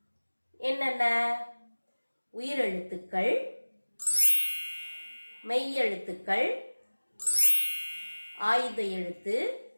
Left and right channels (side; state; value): both; inverted; correlation -1.00